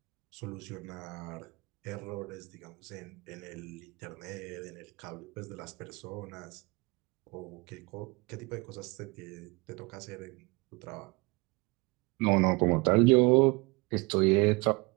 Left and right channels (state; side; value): quieter; left; 26.0 dB